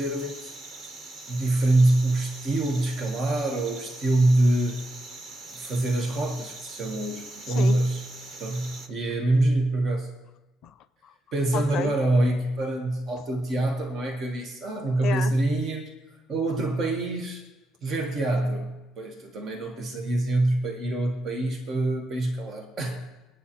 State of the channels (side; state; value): both; normal; correlation 0.87